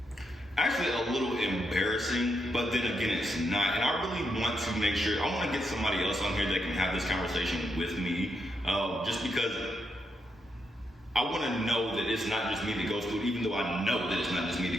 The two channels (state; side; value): normal; both; correlation 0.81